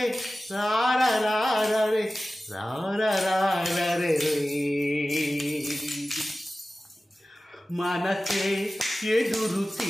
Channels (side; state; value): both; normal; correlation 0.96